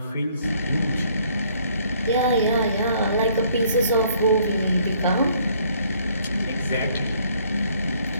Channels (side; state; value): both; inverted; correlation -0.63